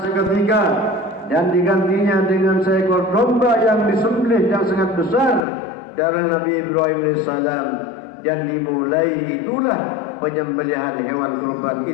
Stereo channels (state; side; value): drops out; right; at 5.5 s